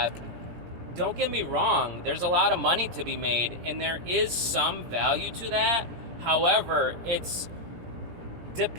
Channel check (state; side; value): late; left; 17 ms